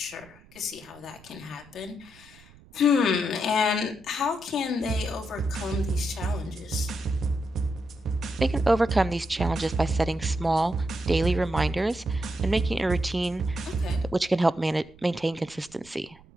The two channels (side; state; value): right; noise; rumble, 25 dB below the sound